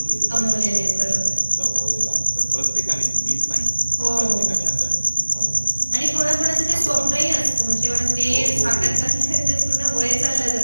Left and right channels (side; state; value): both; inverted; correlation -1.00